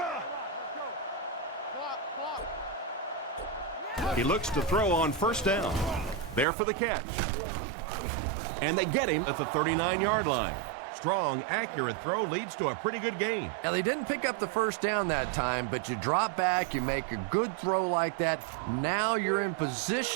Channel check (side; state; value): left; drops out; at 6.5 s